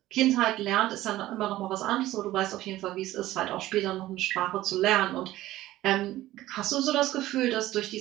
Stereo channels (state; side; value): quieter; left; 15.6 dB